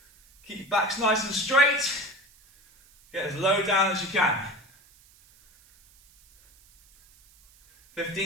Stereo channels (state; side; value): noise; right; hiss, 29 dB below the sound